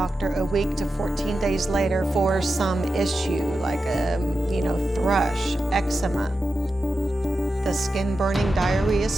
a week to 14 days later for some issue like, thrush, eczema. The skin-burning diarrhea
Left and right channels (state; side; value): normal; both; correlation 0.91